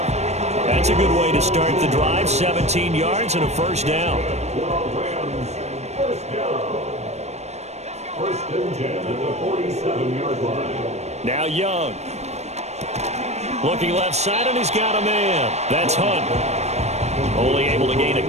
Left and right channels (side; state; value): left; late; 0.32 ms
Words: That's a good way to start the drive. 17 yards and a first down. First and 10 at the 47-yard line. Now Young. Looking left side, and he's got a man. That's Hunt. Only able to gain a